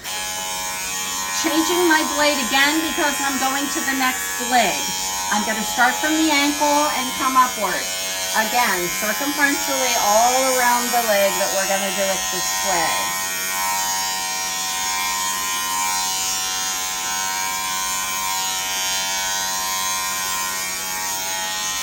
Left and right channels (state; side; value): identical; both; correlation 1.00